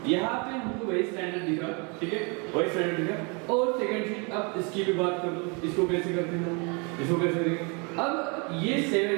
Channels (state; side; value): quieter; left; 32.6 dB